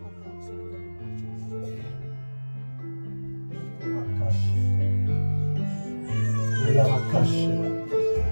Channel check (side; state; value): both; inverted; correlation -1.00